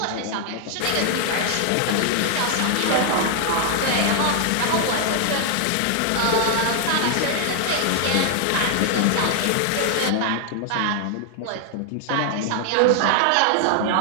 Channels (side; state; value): both; different; correlation 0.00